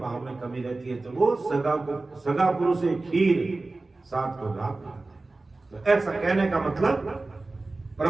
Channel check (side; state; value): left; quieter; 3.3 dB